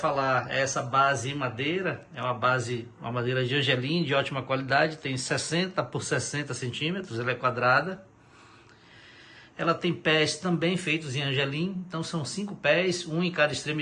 é essa base em madeira, é uma madeira de angelim de ótima qualidade, tem 60 por 60 centímetros, ela é quadrada. Ela tem pés também feitos em angelim, então são 5 pés, um em cada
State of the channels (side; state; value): both; identical; correlation 1.00